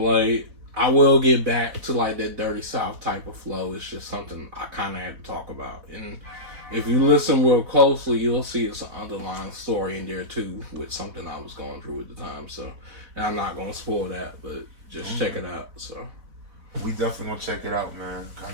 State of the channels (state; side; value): late; left; 4.1 ms